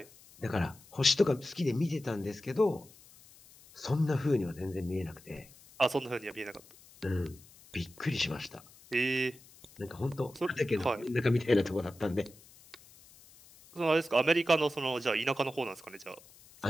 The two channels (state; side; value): noise; left; hiss, 24 dB below the sound